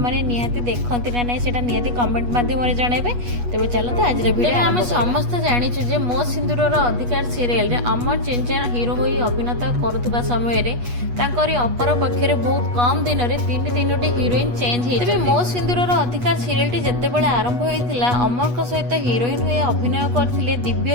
निहाती देखंती ना नाई सेटा निहाती कमेंट माध्यम रे जणेबे। तेबे चलते आज रे वीडियो हम समस्त जानि छु जे मो सिंदूरर अधिकार सीरियल रे अमर चिंचा हीरो होई अभिनेता करथुबा समय रे तांकरी अपर पक्षरे बहुत कम दिन रे तीनोटी हीरोइन चेंज हे। तेबे मो सिंदूरर अधिकार सीरियलटी जत्ते बेले आरंभ होइतिला अमर को सहित हीरोइन होई अभिनय करथिले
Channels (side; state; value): left; late; 8.2 ms